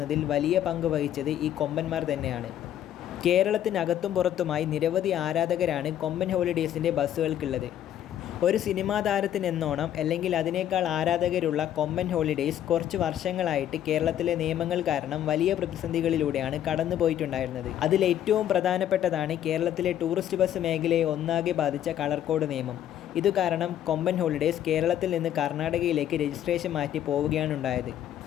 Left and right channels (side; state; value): right; quieter; 11.0 dB